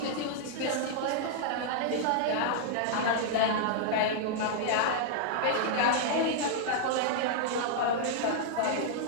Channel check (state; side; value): different; both; correlation -0.01